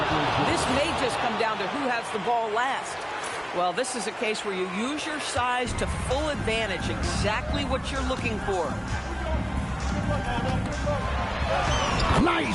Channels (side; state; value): both; identical; correlation 1.00